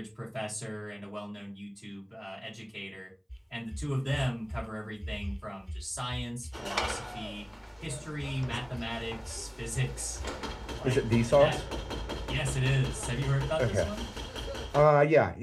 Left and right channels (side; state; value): both; identical; correlation 1.00